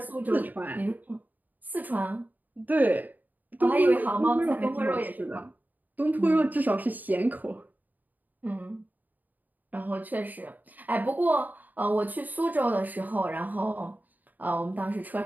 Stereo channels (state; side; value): late; left; 0.084 ms